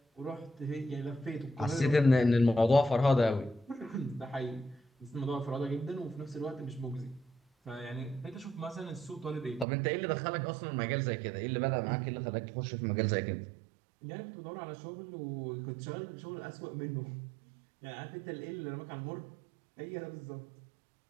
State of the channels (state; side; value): drops out; left; at 9.7 s